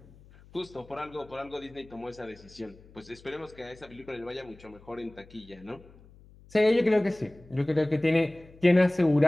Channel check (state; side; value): noise; left; hum, 24 dB below the sound